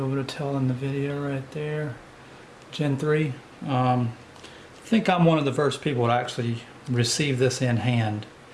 to tell in the video right there. Gen 3. I think I'm one of the first people to actually receive this in hand.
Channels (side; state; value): both; identical; correlation 1.00